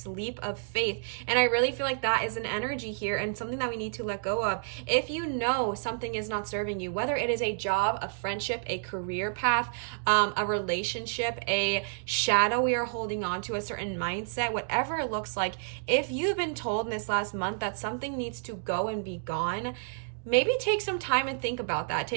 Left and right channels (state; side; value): silent; left; digital silence